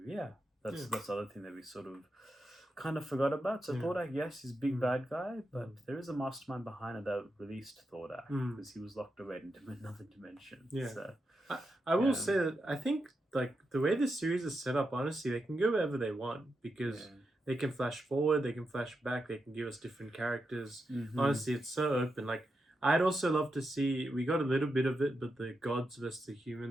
that's the other thing that we sort of kind of forgot about. So Thordak, yes, he's a big bad guy, but there is a mastermind behind it that released Thordak because he was locked away into another dimension. Yeah. So, I will say that I think like the way this series is set up, honestly, they can go wherever they want because they can flash forward, they can flash back, they can give us different characters. Honestly, it's so open. Like I'd also love to see, we got a little bit of it, but the gods versus the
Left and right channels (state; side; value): normal; both; correlation 0.86